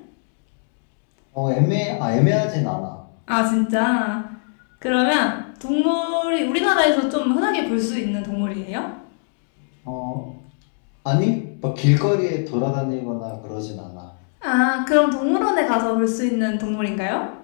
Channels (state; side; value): silent; right; 61 dB below the other